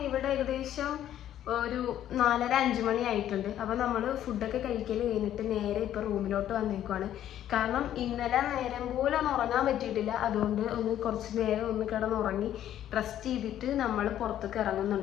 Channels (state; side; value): quieter; right; 11.4 dB